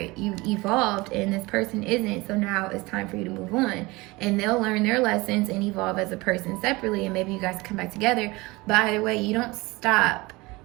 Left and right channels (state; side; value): quieter; left; 22.7 dB